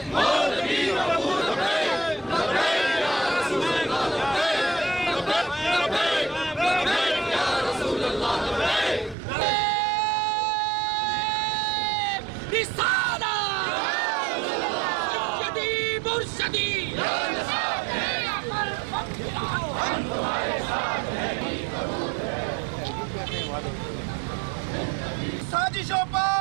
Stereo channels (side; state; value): left; drops out; at 9.2 s